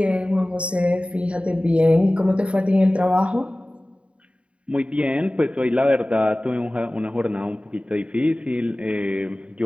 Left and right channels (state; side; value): late; left; 0.060 ms